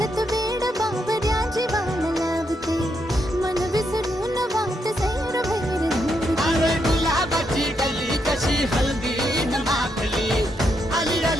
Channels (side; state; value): both; normal; correlation 0.79